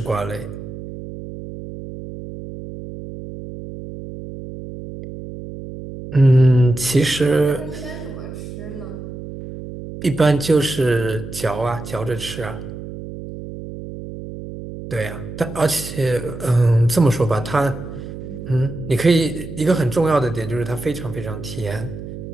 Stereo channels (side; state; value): right; noise; hum, 11 dB below the sound